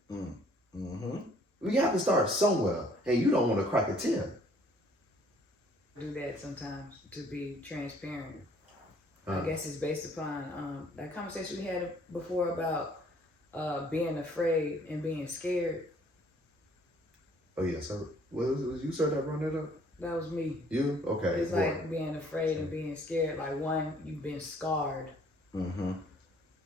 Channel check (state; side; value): normal; both; correlation 0.59